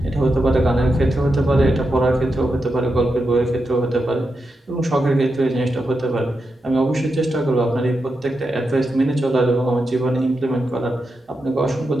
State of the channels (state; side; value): normal; both; correlation 0.87